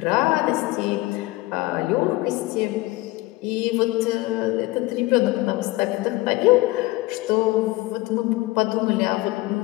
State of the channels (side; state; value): right; quieter; 19.9 dB